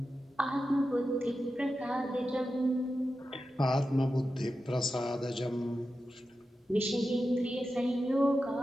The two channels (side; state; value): both; normal; correlation 0.91